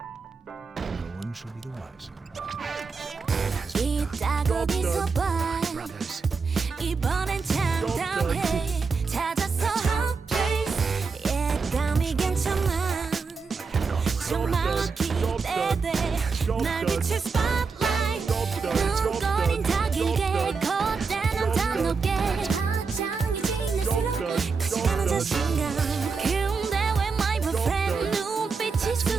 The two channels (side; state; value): left; quieter; 4.9 dB